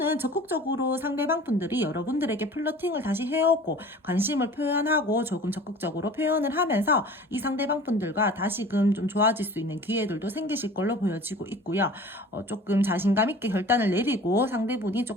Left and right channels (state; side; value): normal; both; correlation 0.43